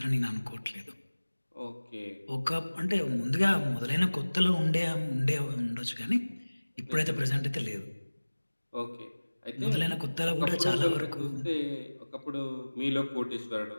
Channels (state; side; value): inverted; both; correlation -1.00